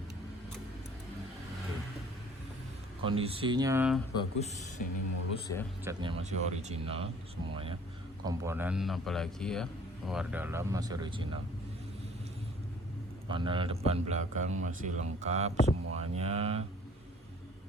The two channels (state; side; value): normal; both; correlation 0.53